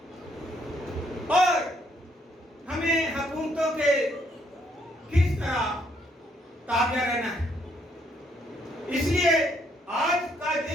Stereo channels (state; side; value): normal; both; correlation 0.70